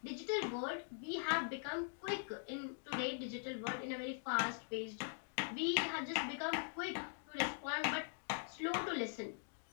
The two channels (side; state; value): right; silent; digital silence